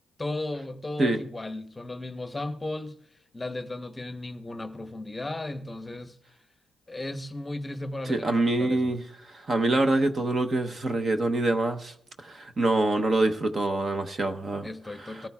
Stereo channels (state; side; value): normal; both; correlation 0.87